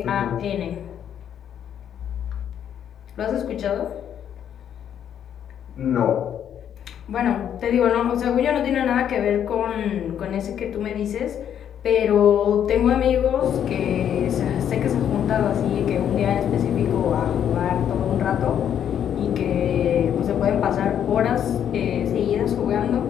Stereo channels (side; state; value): right; quieter; 9.4 dB